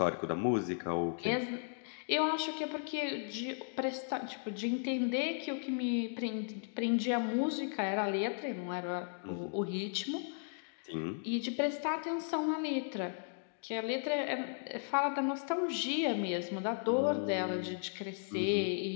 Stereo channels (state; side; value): silent; right; digital silence